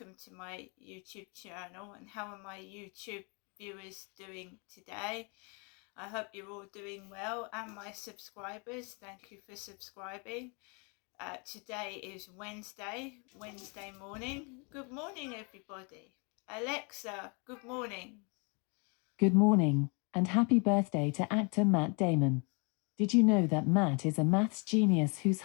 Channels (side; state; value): right; quieter; 33.7 dB